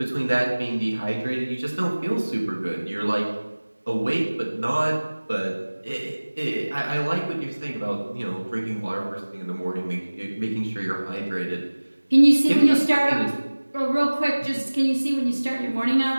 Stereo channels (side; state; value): both; inverted; correlation -1.00